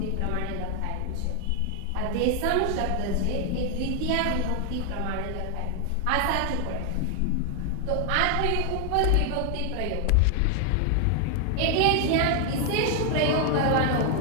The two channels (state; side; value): different; both; correlation 0.00